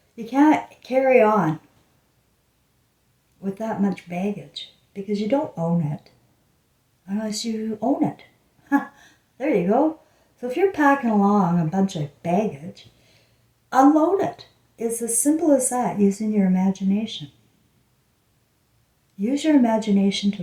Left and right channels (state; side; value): identical; both; correlation 1.00